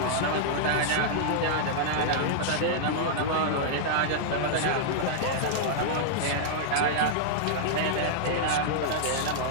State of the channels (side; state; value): both; different; correlation -0.01